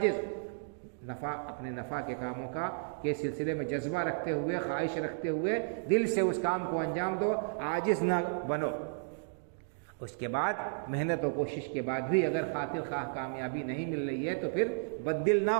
اپنے نفع کے کاموں کے سلسلے میں جذبہ رکھتے ہوئے، خواہش رکھتے ہوئے دل سے اس کام کو انجام دو، عاجز نہ بنو۔ اس کے بعد محنت و کوشش کے بعد بھی اگر خاطر خواہ کامیابی نہیں مل رہی ہے تو پھر بددل نہ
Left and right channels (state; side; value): silent; left; digital silence